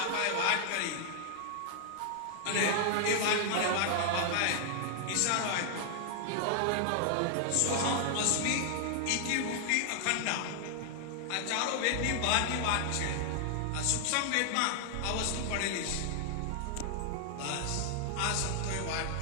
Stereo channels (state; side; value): different; both; correlation 0.00